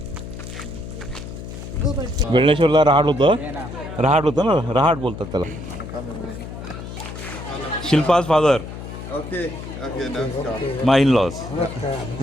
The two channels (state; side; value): noise; left; hum, 10 dB below the sound